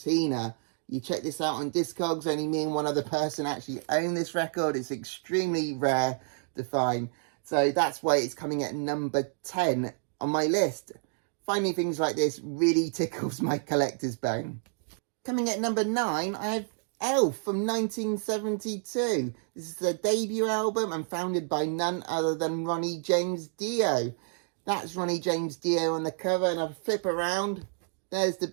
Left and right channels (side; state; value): left; silent; 58 dB below the other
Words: You check this out on Discogs. Only me and one other person actually own this record. It's extremely rare to find. So that's why it's coming at number 10 on my list. Finding things like this really tickles my collector's bone. Coming at number 9, I have Elf from 1972. This is their debut album and founded by none other than Ronnie James Dio. That's Ronnie James Dio on the cover, and I flip around. There's the